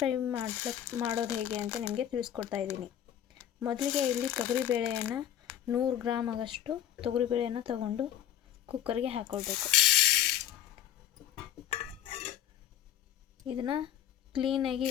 ಮಾಡೋದು ಹೇಗೆ ಅಂತ ನಿಮಗೆ ತಿಳಿಸ್ಕೊಡ್ತಾ ಇದ್ದೀನಿ. ಮೊದಲಿಗೆ ಇಲ್ಲಿ ತೊಗರಿಬೇಳೆಯನ್ನು 100 ಗ್ರಾಮ್ ಆಗಷ್ಟು ತೊಗರಿಬೇಳೆಯನ್ನು ತಗೊಂಡು ಕುಕ್ಕರ್ಗೆ ಹಾಕ್ಕೊಳ್ಬೇಕು. ಇದನ್ನು ಕ್ಲೀನಾಗಿ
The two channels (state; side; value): quieter; right; 10.8 dB